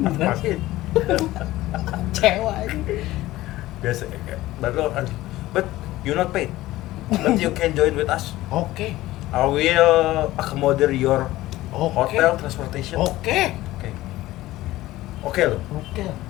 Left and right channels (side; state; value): right; quieter; 16.7 dB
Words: Masih Kecewa anjing. biasa. But you not paid. But you can join with us. Oke. I will accommodate your Oke. hotel transportation. Oke. Oke. Oke lo. Oke.